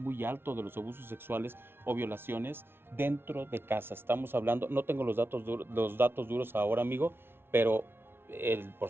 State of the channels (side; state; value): left; late; 0.11 ms